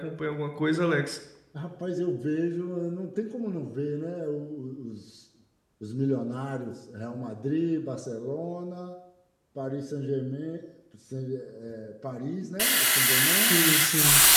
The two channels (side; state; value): both; identical; correlation 1.00